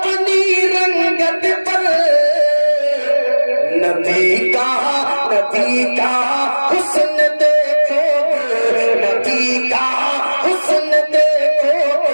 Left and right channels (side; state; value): both; inverted; correlation -1.00